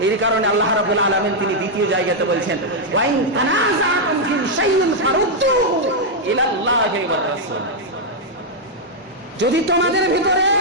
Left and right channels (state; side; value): normal; both; correlation -0.03